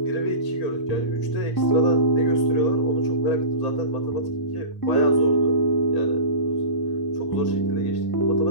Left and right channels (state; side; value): late; right; 1.8 ms